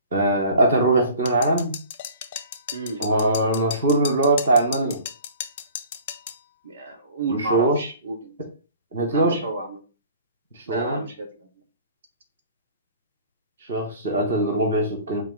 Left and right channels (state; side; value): inverted; both; correlation -0.47